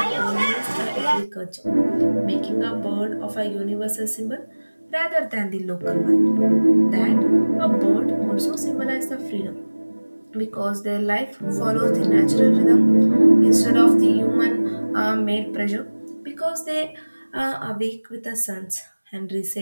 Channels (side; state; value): both; inverted; correlation -1.00